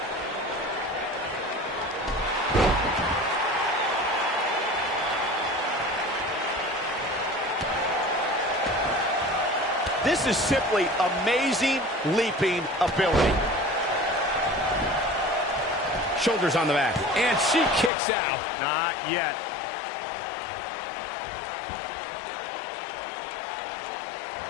This is simply amazing leaping ability. Shoulders on the back. And she kicks out. Not yet.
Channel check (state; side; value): drops out; right; at 17.9 s